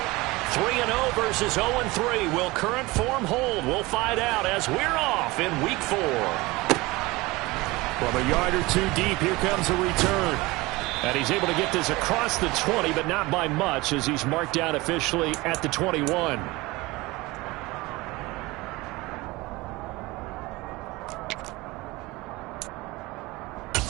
Versus 0-3. Will current form hold? We'll find out as we're off in Week 4. From a yard or two deep, here comes a return. And he's able to get this across the 20, but not by much as he's marked down officially at the 21.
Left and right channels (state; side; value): quieter; left; 21.6 dB